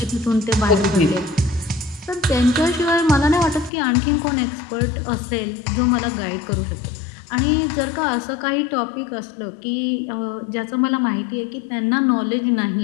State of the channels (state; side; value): drops out; right; at 3.7 s